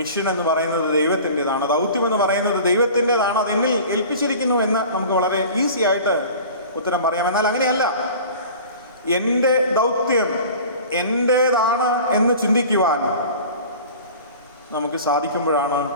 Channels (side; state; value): both; inverted; correlation -0.41